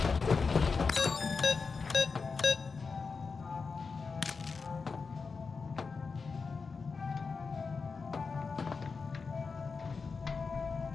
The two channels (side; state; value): right; quieter; 4.8 dB